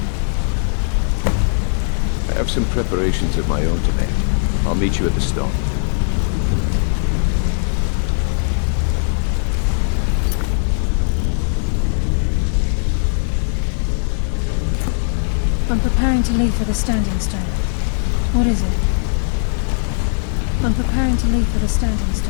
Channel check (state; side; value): silent; right; digital silence